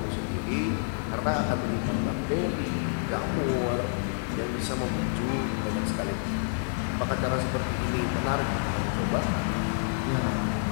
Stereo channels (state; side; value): silent; right; digital silence